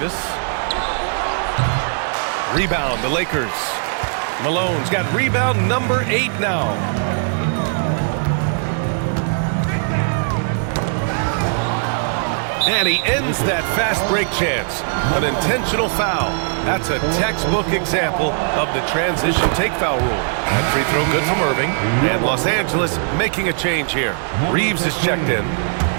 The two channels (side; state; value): left; silent; 64 dB below the other